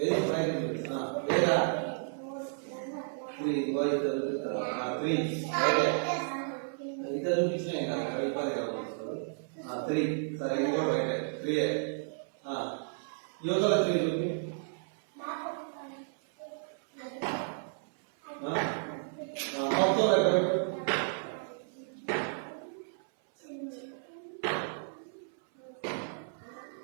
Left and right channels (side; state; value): left; silent; 56 dB below the other